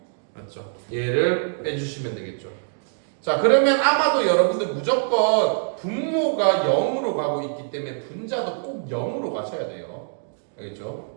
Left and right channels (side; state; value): left; silent; digital silence